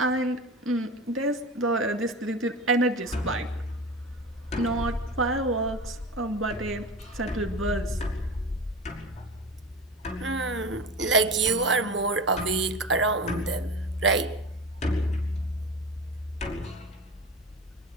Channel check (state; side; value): normal; both; correlation 0.29